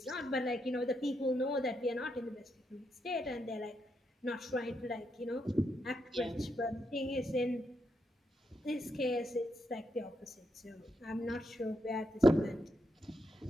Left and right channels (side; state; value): both; normal; correlation 0.81